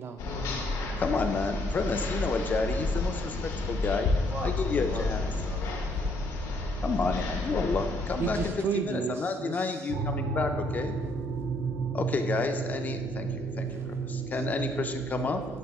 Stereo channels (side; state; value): both; normal; correlation 0.68